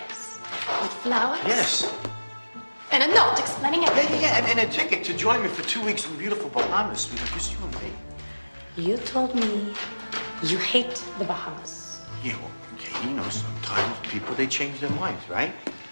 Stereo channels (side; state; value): both; inverted; correlation -1.00